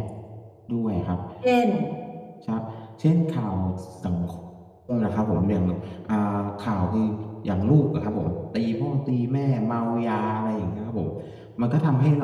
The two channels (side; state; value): both; identical; correlation 1.00